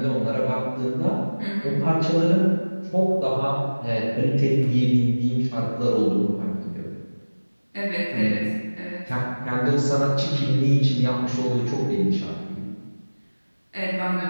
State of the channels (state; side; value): inverted; both; correlation -1.00